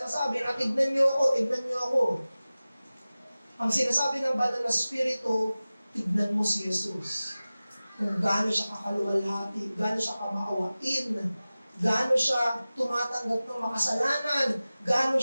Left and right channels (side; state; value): both; inverted; correlation -0.97